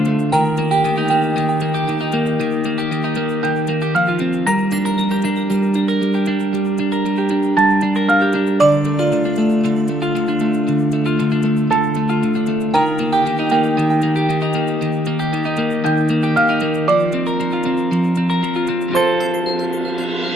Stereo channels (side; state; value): both; normal; correlation 0.72